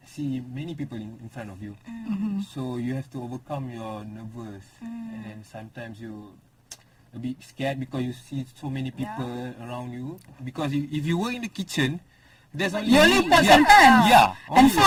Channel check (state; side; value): identical; both; correlation 1.00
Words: see many people in front of you. So you have to overcome your nervous and then sometimes you a bit scared because you see so many people around you. Because if you work in the kitchen, there's only you only pots and pans. Yeah, and